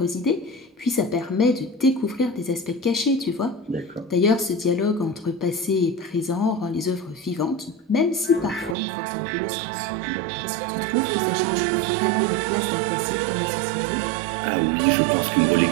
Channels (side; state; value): left; drops out; at 8.8 s